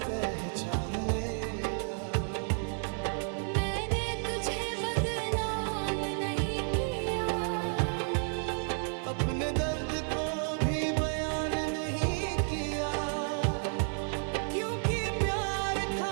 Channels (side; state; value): left; silent; 57 dB below the other